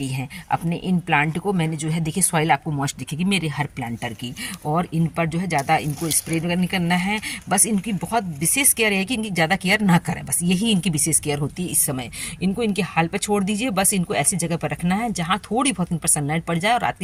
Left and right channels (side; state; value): both; identical; correlation 1.00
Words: हैं। अपने इन प्लांट को मैंने जो है देखिए सॉइल आपको मॉइस्ट दिखेगी मेरे हर प्लांटर की, और इन पर जो है ज़्यादा इनको स्प्रे नहीं करना है। बस इनकी बहुत विशेष केयर है कि इनकी ज़्यादा केयर ना करें, बस यही इनकी विशेष केयर होती है इस समय। इनको इनके हाल पर छोड़ दीजिए, बस इनको ऐसी जगह पर रखना है जहाँ थोड़ी बहुत इन पर सनलाइट पड़ जाए और रात